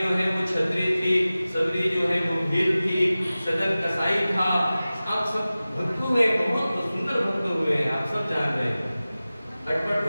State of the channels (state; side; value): inverted; both; correlation -0.96